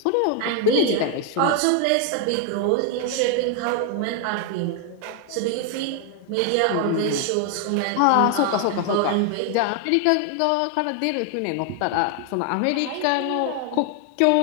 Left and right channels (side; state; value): both; different; correlation 0.00